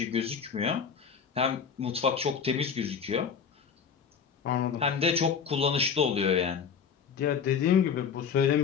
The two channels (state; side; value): quieter; right; 6.7 dB